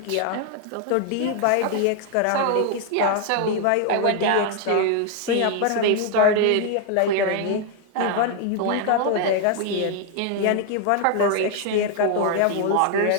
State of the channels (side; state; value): both; different; correlation 0.01